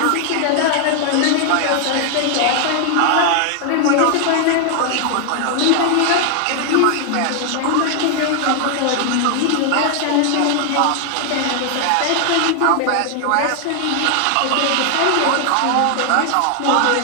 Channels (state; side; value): different; both; correlation 0.00